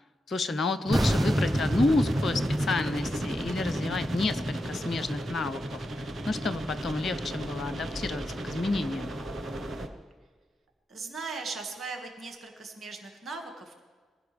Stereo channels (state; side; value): normal; both; correlation 0.87